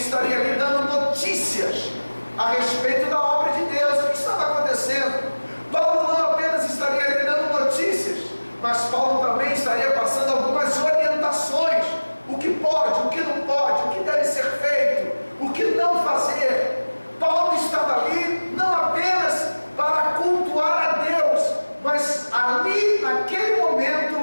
ali dando notícias a respeito da obra de Deus, o que estava acontecendo. Paulo não apenas estaria ali dando notícias, mas Paulo também estaria passando algumas orientações, o que pode, o que não pode, o que deve ser feito, o que não fazer. Paulo estava ali não apenas para cultuar a Deus, mas ali, naquele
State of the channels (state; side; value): inverted; both; correlation -1.00